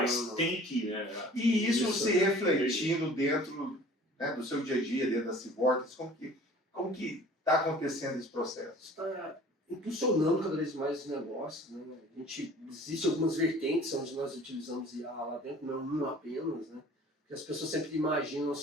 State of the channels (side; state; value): both; normal; correlation 0.48